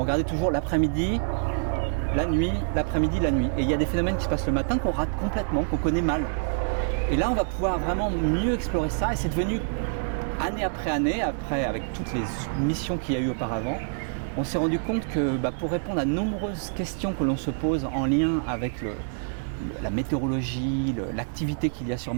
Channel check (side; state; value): left; silent; digital silence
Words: regardait toujours l'après-midi, la nuit, l'après-midi, la nuit. Et il y a des phénomènes qui se passent le matin qu'on rate complètement, qu'on connaît mal. Et là, on va pouvoir vraiment mieux explorer ça. Et c'est devenu, année après année, avec toutes les missions qu'il y a eu auparavant, on s'est rendu compte que pour répondre à de nombreuses questions que l'on se pose en lien avec la météorologie, l'activité qu'il y a sur